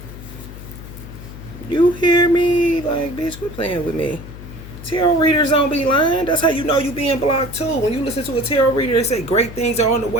You hear me? Like, bitch, quit playing with me. Tarot readers don't be lying. That's how you know you being blocked too. When you listen to a tarot reader, they say great things are on the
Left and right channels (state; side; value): noise; left; hum, 14 dB below the sound